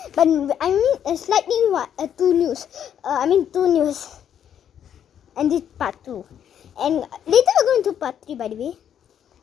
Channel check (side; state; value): right; quieter; 9.3 dB